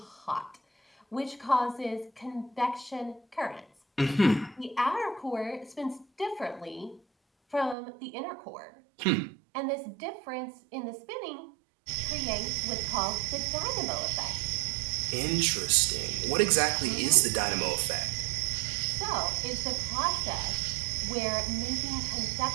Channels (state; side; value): drops out; left; at 7.8 s